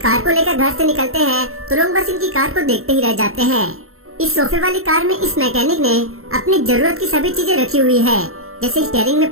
को लेकर घर से निकलते हैं तो लोग बस इनकी कार को देखते ही रह जाते हैं। इस सोफे वाली कार में इस मैकेनिक ने अपनी जरूरत की सभी चीजें रखी हुई है, जैसे स्टीयरिंग में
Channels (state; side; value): late; left; 0.62 ms